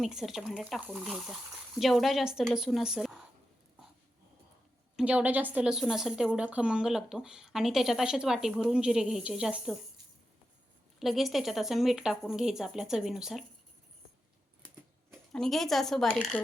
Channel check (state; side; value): normal; both; correlation 0.89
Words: भांड्यात टाकून घ्यायचा. जेवढा जास्त लसूण असेल तेवढा खमंग लागतो. आणि त्याच्यात असेच वाटी भरून जिरे घ्यायचे जास्त. लगेच त्याच्यात असं मीठ टाकून घ्यायचं आपल्या चवीनुसार आणि घ्यायचं असं बारीक